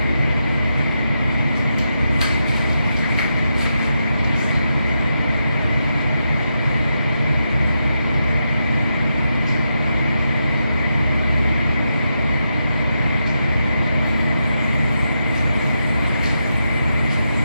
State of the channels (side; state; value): both; inverted; correlation -0.85